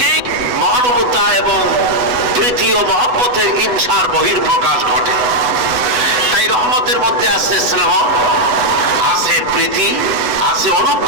মহানুভবতা এবং প্রীতি ও মহব্বতের হিংসার বহির্প্রকাশ ঘটে। তাই রহমতের মধ্যে আছে স্নেহ, আছে প্রীতি, আছে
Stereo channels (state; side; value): late; left; 8.1 ms